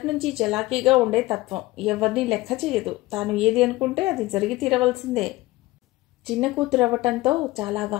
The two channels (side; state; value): right; quieter; 19.1 dB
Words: నుంచి చలాకీగా ఉండే తత్వం. ఎవరిని లెక్క చేయదు. తాను ఏది అనుకుంటే అది జరిగి తీరవలసిందే. చిన్న కూతురు అవ్వటంతో చాలా